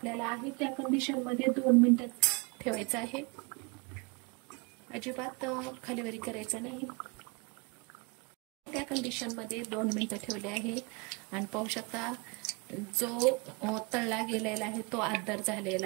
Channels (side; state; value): left; quieter; 30.4 dB